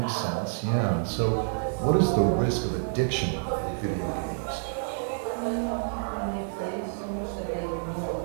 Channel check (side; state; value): left; silent; digital silence